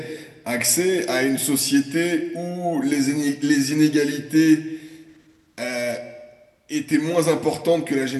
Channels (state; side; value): identical; both; correlation 1.00